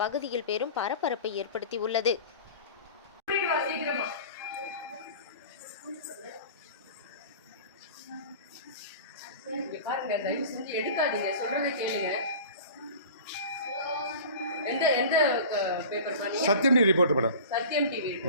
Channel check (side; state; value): both; inverted; correlation -0.38